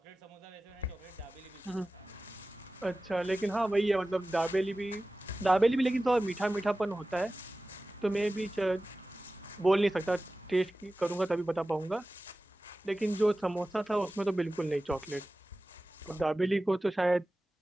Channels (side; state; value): both; normal; correlation 0.96